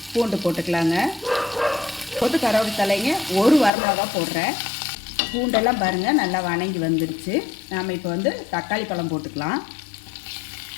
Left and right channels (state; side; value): drops out; right; at 3.7 s